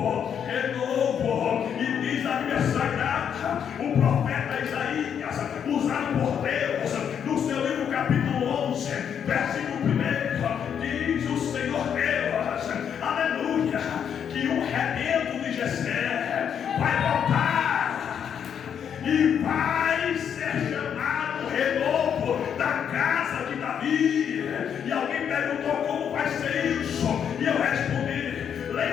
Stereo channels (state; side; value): quieter; right; 8.2 dB